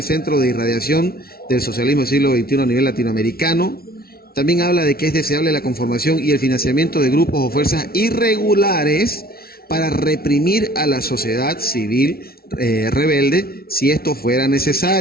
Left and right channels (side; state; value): right; late; 0.44 ms